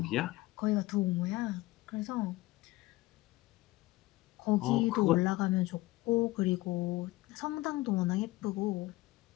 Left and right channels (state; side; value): quieter; right; 19.2 dB